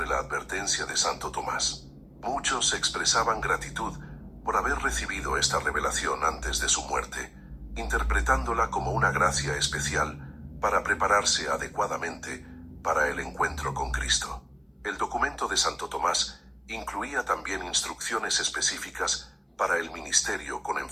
la advertencia de Santo Tomás. Muchos expresaban gratitud por haber recibido esta revelación antes de su muerte, interpretándola como una gracia especial para prepararse adecuadamente para el encuentro con Cristo. El documento de Santo Tomás incluía también instrucciones específicas para el ministerio con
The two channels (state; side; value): identical; both; correlation 1.00